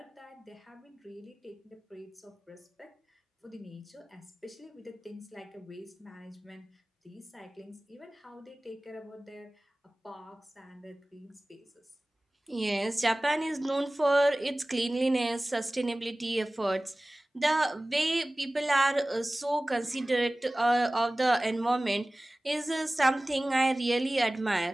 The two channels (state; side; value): normal; both; correlation 0.98